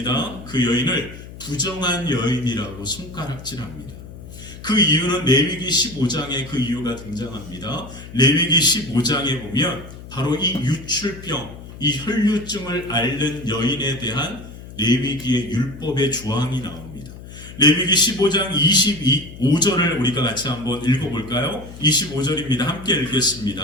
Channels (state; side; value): noise; left; hum, 15 dB below the sound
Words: 그 여인을 부정한 여인이라고 손가락질합니다. 그 이유는 레위기 15장에 그 이유가 등장합니다. 레위기 15장에 보면 바로 이 유출병, 이 혈루증을 앓는 여인에 대한 레위기의 율법의 조항이 나옵니다. 레위기 15장 25절을 우리가 같이 한번 읽어볼까요? 25절입니다. 함께